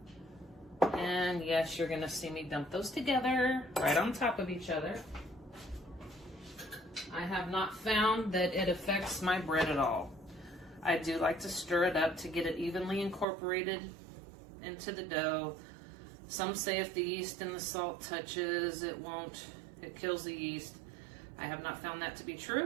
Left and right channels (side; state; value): left; drops out; at 13.2 s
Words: And yes, you're gonna see me dump those together right on top of each other. I have not found that it affects my bread at all. I do like to stir it up to get it evenly incorporated into the dough. Some say if the yeast and the salt touches, it won't, it kills the yeast. I have not found that to be